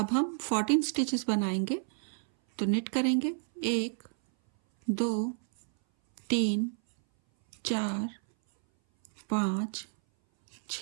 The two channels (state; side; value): silent; left; 58 dB below the other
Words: हम 14 स्टिचेस बनाएंगे। तो निट करेंगे 1, 2, 3, 4, 5,